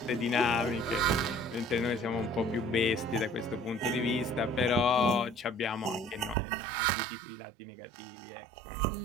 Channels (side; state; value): left; drops out; at 6.4 s